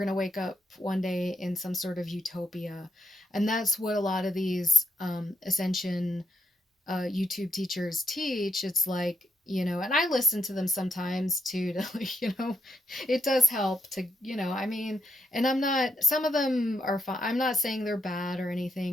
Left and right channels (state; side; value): normal; both; correlation 0.78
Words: to wake up one day in some sort of utopia. And that's what a lot of these Ascension YouTube teachers teach. It's like, and I listen to them sometimes too, to, it does help to, I mean, and I'm not, some of them are fine. I'm not saying they're bad or